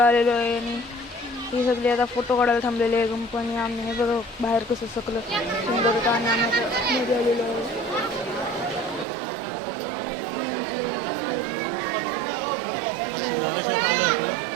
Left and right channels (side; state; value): left; drops out; at 9.1 s